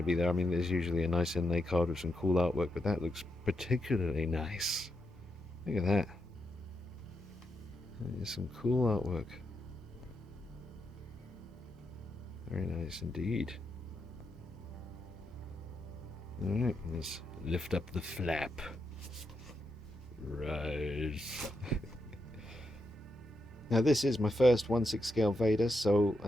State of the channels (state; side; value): normal; both; correlation 0.83